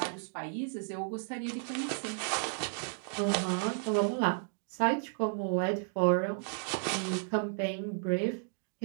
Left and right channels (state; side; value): silent; left; digital silence